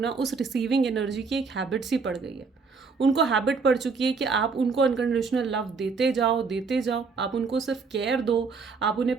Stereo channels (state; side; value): quieter; left; 4.8 dB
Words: उस रिसीविंग एनर्जी की एक हैबिट सी पड़ गई है। उनको हैबिट पड़ चुकी है कि आप उनको अनकंडीशनल लव देते जाओ, आप उनको सिर्फ केयर दो, आप